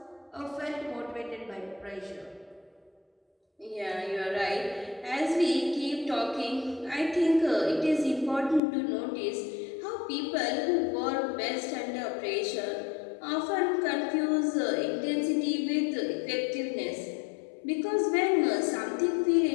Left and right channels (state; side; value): drops out; right; at 8.6 s